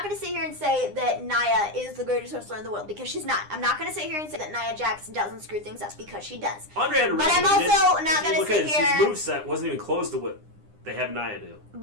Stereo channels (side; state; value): left; late; 9.8 ms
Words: gonna sit here and say that Nia is the greatest wrestler in the world because she's not. I'm not gonna sit here and say that Nia Jax doesn't screw things up because she does. Andre had a but I'm also not gonna sit here. His moveset wasn't even close to what they have Nia do.